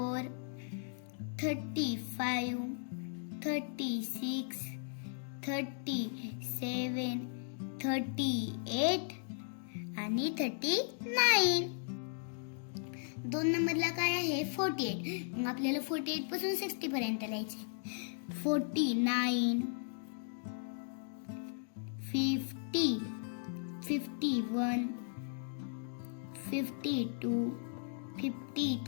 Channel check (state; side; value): silent; right; digital silence